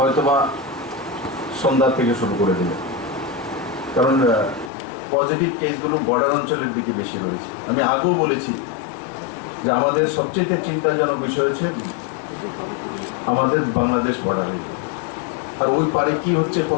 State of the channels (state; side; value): drops out; right; at 4.7 s